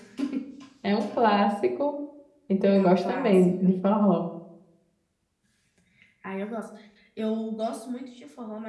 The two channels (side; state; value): both; identical; correlation 1.00